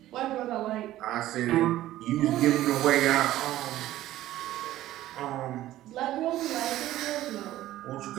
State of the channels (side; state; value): left; quieter; 14.5 dB